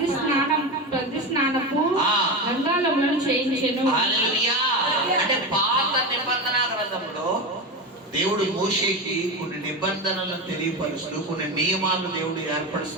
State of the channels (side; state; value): both; normal; correlation 0.20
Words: స్నానపు గంగాళములను చేయించెను. అంటే పాత నిబంధన గ్రంథంలో దేవుడు మోషేకి కొన్ని నిబంధనలను తెలియపరుస్తూ, కొన్ని నియమాలను దేవుడు